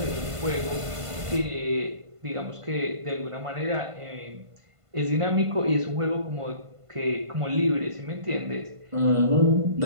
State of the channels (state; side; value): late; left; 1.5 ms